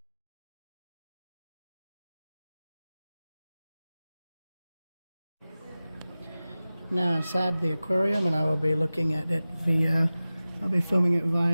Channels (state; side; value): inverted; both; correlation -0.97